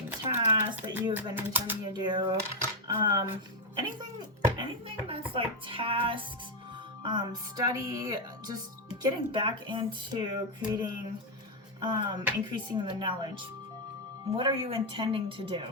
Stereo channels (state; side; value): normal; both; correlation 0.03